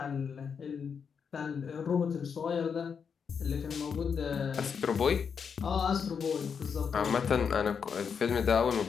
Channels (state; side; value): quieter; right; 6.5 dB